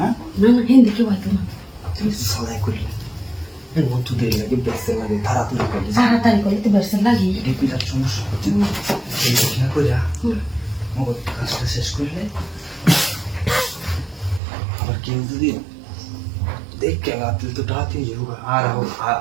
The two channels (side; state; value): left; drops out; at 14.4 s